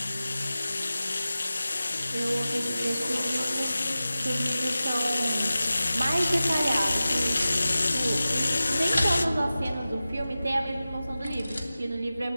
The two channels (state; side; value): inverted; both; correlation -0.95